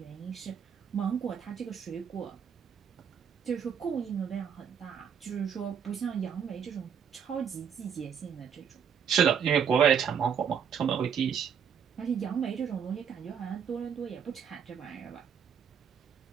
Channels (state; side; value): quieter; left; 7.6 dB